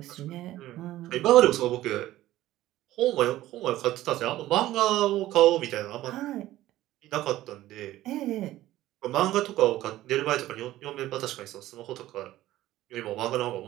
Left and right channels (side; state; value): left; quieter; 15.1 dB